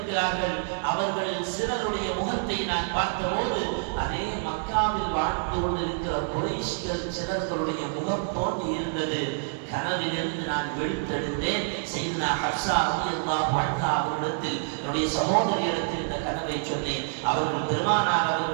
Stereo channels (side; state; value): left; silent; 60 dB below the other